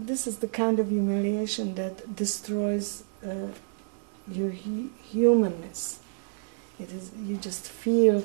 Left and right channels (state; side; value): silent; left; digital silence